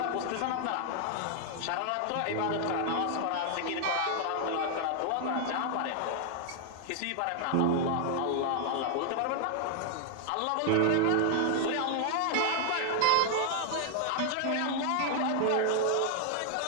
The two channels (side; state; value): both; different; correlation 0.00